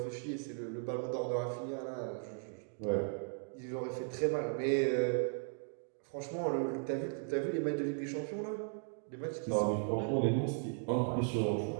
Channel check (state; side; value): silent; left; 53 dB below the other